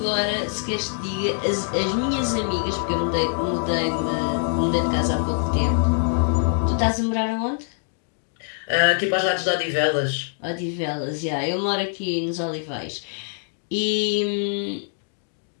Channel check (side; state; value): right; silent; digital silence